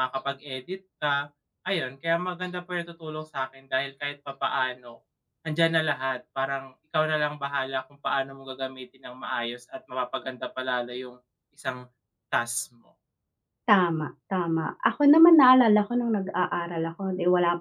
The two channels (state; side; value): identical; both; correlation 1.00